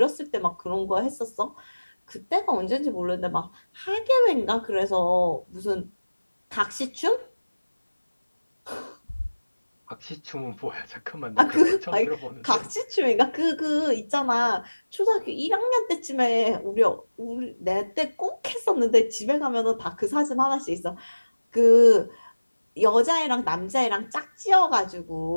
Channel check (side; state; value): both; inverted; correlation -1.00